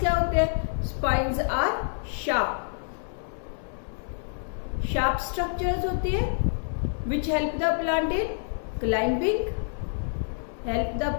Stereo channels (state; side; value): silent; right; 60 dB below the other